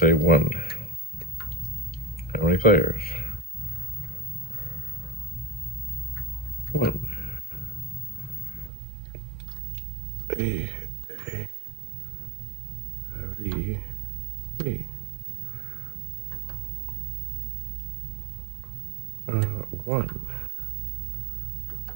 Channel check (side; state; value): left; drops out; at 8.7 s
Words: 1. How many players? 1. A, B, B. 1.